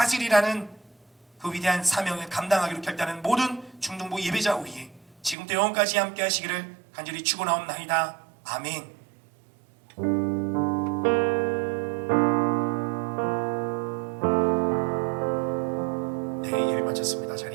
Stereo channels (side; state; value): left; drops out; at 5.4 s